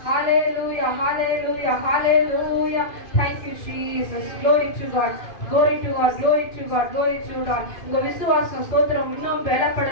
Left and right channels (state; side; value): late; right; 2.5 ms